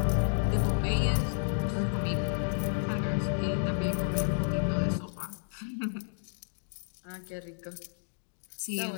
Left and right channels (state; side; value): silent; right; digital silence